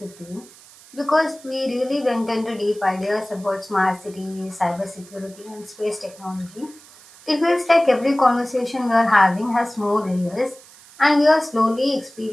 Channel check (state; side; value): noise; right; hiss, 23 dB below the sound